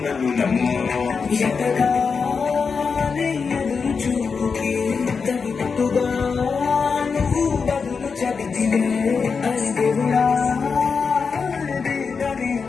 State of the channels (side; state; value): right; quieter; 5.3 dB